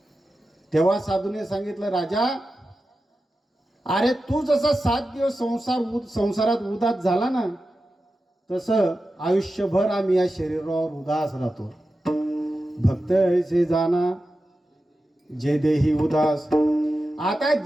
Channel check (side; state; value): both; normal; correlation 0.92